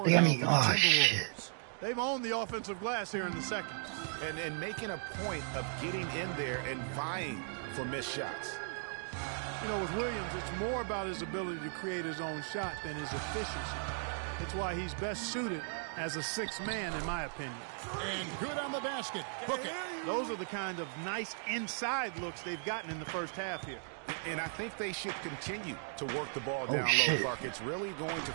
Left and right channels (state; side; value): silent; left; 53 dB below the other